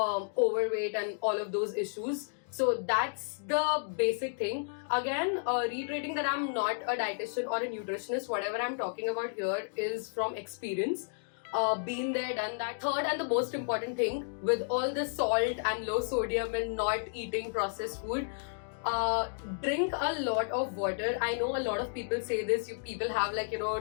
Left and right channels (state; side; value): silent; right; digital silence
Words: and all of those issues. So that's the basic thing. Again, reiterating that I'm not a dietitian or a nutritionist. Whatever I'm talking about here is from experience. Been there, done that. Third, and the most important thing, with all the salt and low sodium and not eating processed food, drink a lot of water. I know a lot of people say this, people have